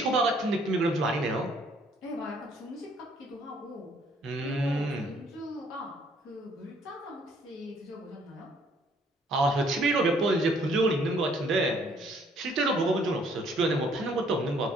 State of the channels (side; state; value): both; normal; correlation 0.63